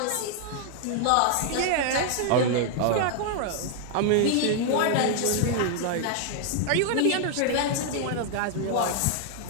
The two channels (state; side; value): different; both; correlation 0.00